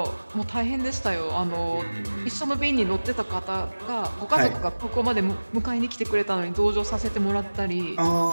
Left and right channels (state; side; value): inverted; both; correlation -1.00